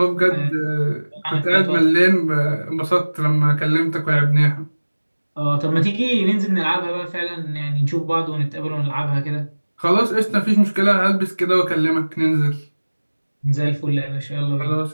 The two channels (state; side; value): inverted; both; correlation -1.00